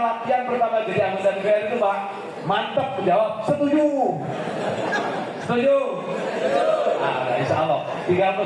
pertama jadi anggota DPR itu Pak, mantap menjawab setuju. Setuju? Nah, insya Allah. Tinggal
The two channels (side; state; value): both; identical; correlation 1.00